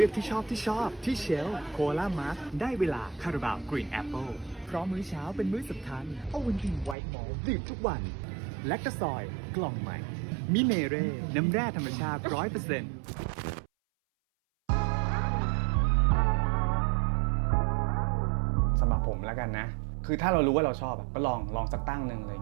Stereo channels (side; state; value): left; drops out; at 7.0 s